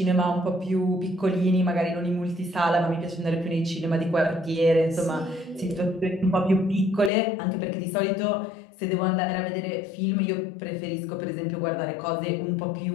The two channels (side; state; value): right; drops out; at 7.1 s